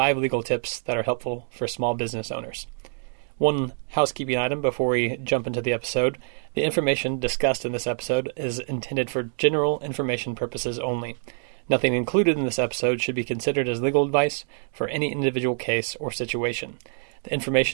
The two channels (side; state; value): left; silent; 61 dB below the other